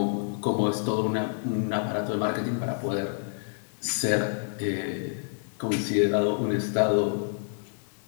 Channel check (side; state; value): right; silent; digital silence